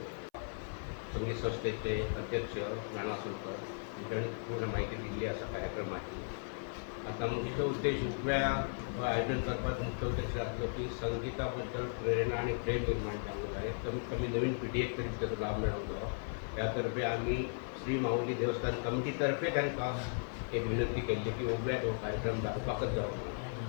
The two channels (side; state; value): right; silent; 54 dB below the other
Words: संगीत संस्थेचे अध्यक्ष नाना आसोलकर हांणी पूर्ण माहिती दिली आसा कार्यक्रमाची. आता मुख्य उद्देश उगव्या आयोजन करपाचो मुख्य उद्देश आसलो की संगीता बद्दल प्रेरणा आणि प्रेम निर्माण जावंक जाय. कमीत कमी नवीन पिढयेक तरी ताचो लाभ मेळोंक जाय. ह्या तर्फे आमी श्री माऊली देवस्थान कमिटी तर्फे तांकां एक विनंती केल्ली की उगव्याक हो कार्यक्रम जावपाकच जावप ना